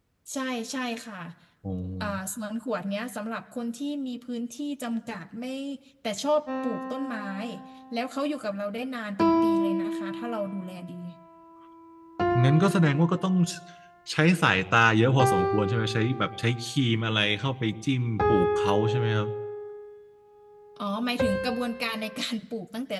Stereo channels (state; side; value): identical; both; correlation 1.00